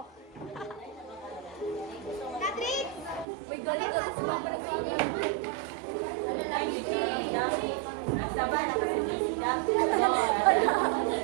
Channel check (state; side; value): drops out; left; at 3.2 s